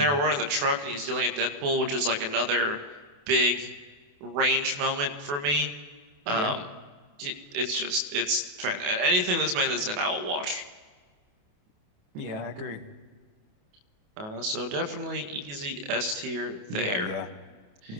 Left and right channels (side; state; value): left; late; 28 ms